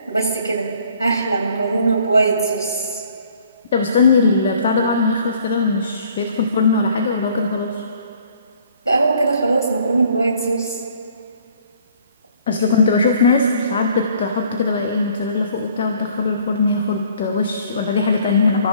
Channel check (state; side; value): inverted; both; correlation -0.58